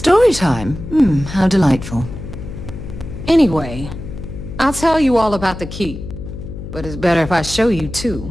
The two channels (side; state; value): left; noise; hum, 10 dB below the sound